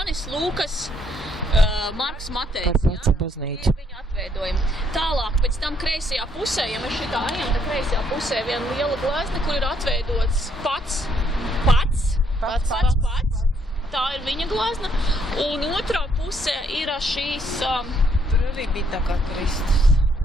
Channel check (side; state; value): both; normal; correlation 0.70